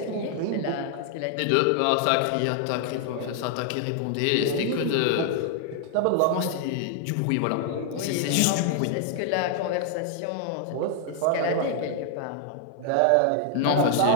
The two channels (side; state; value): both; different; correlation 0.00